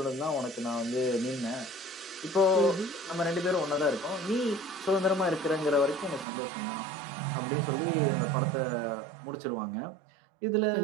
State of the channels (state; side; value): drops out; left; at 6.2 s